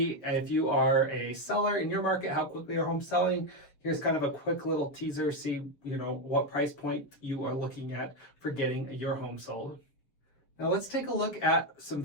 if you are a seller in your market, how quickly are homes selling? Here's kind of a quick little teaser, see what price point you are looking at for getting your home sold. Now let's take a look at some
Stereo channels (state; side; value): late; right; 7.0 ms